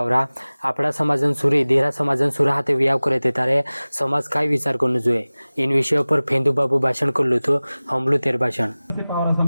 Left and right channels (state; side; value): inverted; both; correlation -0.99